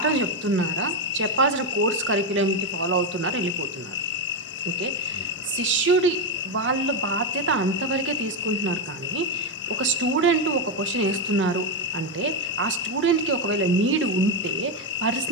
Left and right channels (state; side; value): normal; both; correlation 0.07